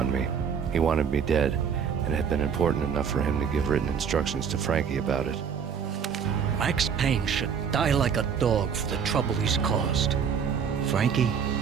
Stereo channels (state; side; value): quieter; left; 7.1 dB